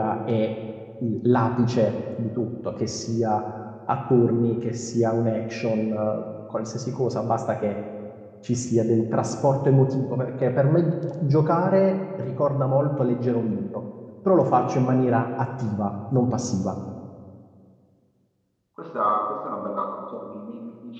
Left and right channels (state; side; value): identical; both; correlation 1.00